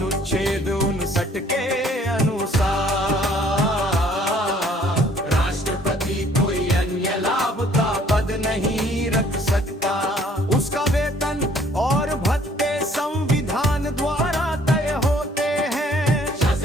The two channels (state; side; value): normal; both; correlation 0.59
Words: 59 के अनुसार राष्ट्रपति कोई अन्य लाभ का पद नहीं रख सकता। उसका वेतन और भत्ते संविधान द्वारा तय होते हैं।